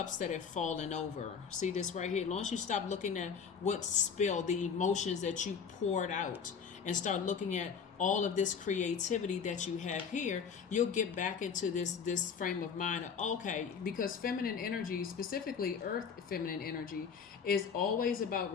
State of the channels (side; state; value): right; quieter; 6.5 dB